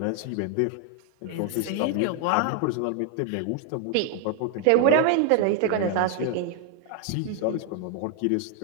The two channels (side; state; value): both; different; correlation 0.00